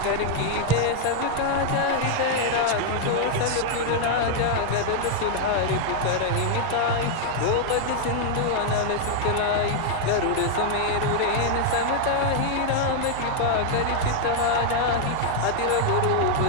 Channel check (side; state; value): both; different; correlation -0.01